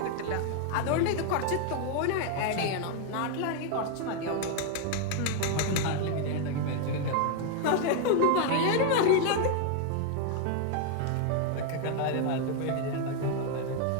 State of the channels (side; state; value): both; different; correlation 0.00